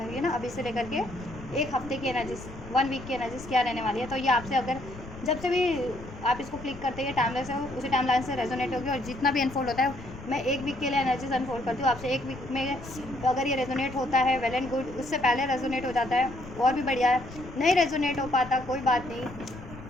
ये ना अभी से लेकर के 1 हफ्ते की एनर्जीज, 1 वीक की एनर्जीज क्या रहने वाली है। तो ये आपसे अगर जब से भी आप इसको क्लिक करते हैं टाइमलाइन से, उसी टाइमलाइन से रेजोनेट होगी। और जितना भी अनफोल्ड होता है, मैं 1 वीक के लिए एनर्जीज अनफोल्ड करती हूँ आपसे। 1 वीक में तो अगर ये रेजोनेट होता है वेल एंड गुड, उससे पहले रेजोनेट हो जाता है और भी बढ़िया है। नहीं रेजोनेट हो पाता कोई बात नहीं,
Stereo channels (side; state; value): left; noise; rumble, 14 dB below the sound